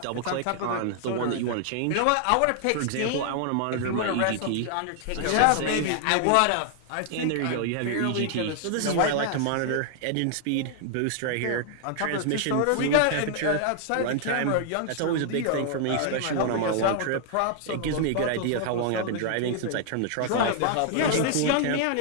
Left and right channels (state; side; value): different; both; correlation 0.00